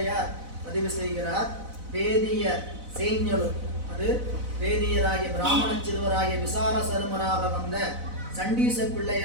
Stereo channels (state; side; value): late; left; 4.0 ms